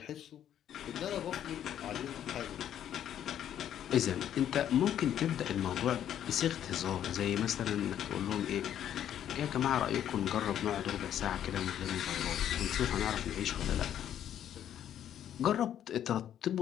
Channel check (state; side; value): quieter; right; 10.4 dB